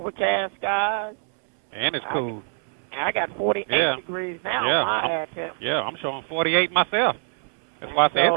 skies. And it's cool. I got 48 degrees now. Yeah, I'm showing 48 myself. That's why I say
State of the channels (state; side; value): silent; left; 61 dB below the other